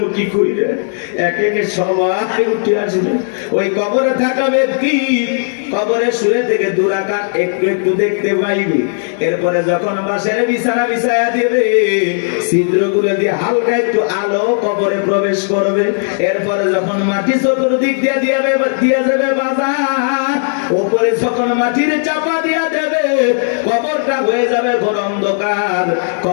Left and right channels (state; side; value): silent; right; digital silence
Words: মুখী কইরে একে একে সবাই উঠে আসবে। ওই কবরে থাকা ব্যক্তি কবরে শুয়ে থেকে দুরাকাত একটু একটু দেখতে পাইবে। এরপরে যখন বাসের বিছানা বিছায়া দিবে, ছিদ্রগুলো দিয়ে হালকা একটু আলো কবরে প্রবেশ করবে। এরপরে যখন মাটি চতুর্দিক দিয়ে যাবে বাজার, উপরে যখন মাটির চাপা দিয়া দেবে, কবরটা হয়ে যাবে ঘোর অন্ধকার।